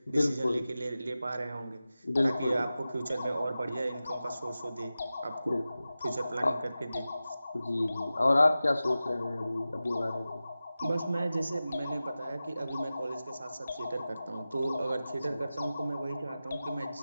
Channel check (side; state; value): both; inverted; correlation -0.94